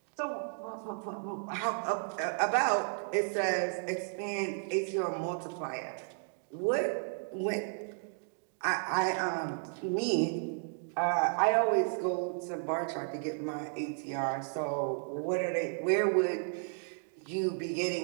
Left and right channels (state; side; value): silent; left; 55 dB below the other